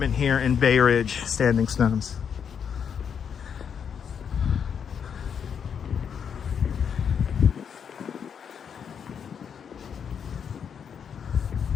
here in Bay Ridge, Standing Stones.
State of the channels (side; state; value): right; quieter; 7.4 dB